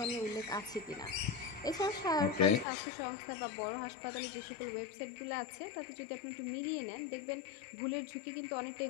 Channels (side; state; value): right; drops out; at 2.7 s